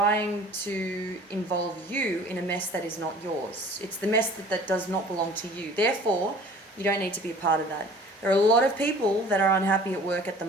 to involve you in a mess that is not yours. It's the mess that does not belong to you. Therefore, you don't need to be a part of that. There are a lot of people that are unhappy at work at the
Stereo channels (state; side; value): normal; both; correlation 0.48